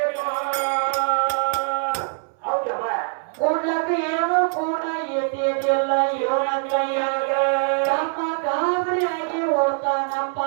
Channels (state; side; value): silent; left; 63 dB below the other